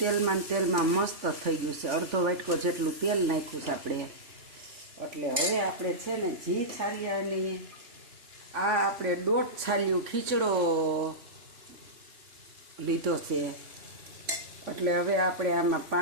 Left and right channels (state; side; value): late; left; 3.5 ms